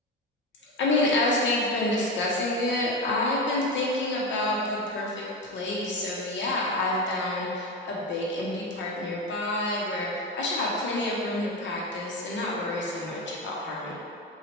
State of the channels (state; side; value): normal; both; correlation 0.19